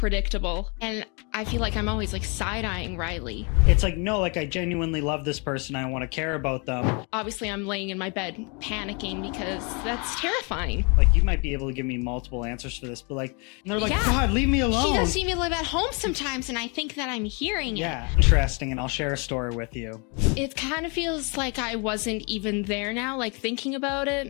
And I feel like I'm always like side-eyeing Riley. It's like, no, like I genuinely love this person. I want to care about them. Obviously, I'm laying in my bed panicking because that's terrifying. Like, you might be able to give me multiple answers for this, but like, and they're like, Yeah. God, leave me alone. She does see me live at home sometimes, and I think that I'm hearing it. Yeah, interesting, and I'll share a story with you. It kind of feels like I wasn't even there now, like thinking about it.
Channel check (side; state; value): right; quieter; 33.4 dB